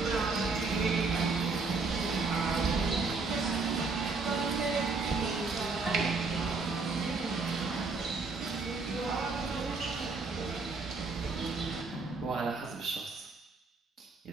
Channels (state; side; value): quieter; left; 4.1 dB